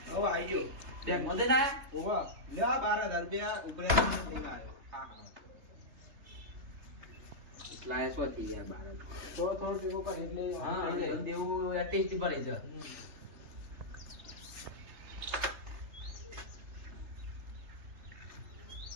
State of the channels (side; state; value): left; late; 3.3 ms